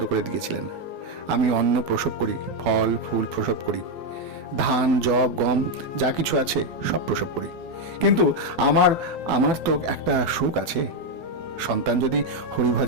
করে দিয়েছিলেন। আমি অন্ন প্রসব করি, ফল ফুল প্রসব করি, ধান জব গম যা কিছু আছে সব প্রসব করি। কিন্তু আমার আমার তো একটা সুখ আছে। সন্তান যদি হরি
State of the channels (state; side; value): late; left; 12 ms